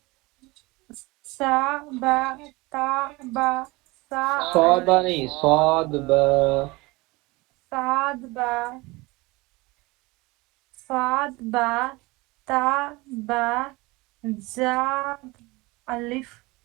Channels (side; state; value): left; quieter; 23.0 dB